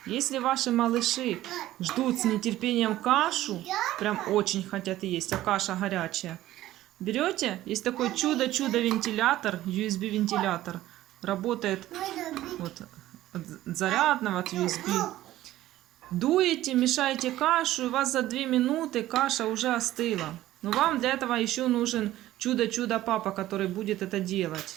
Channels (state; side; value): quieter; left; 14.8 dB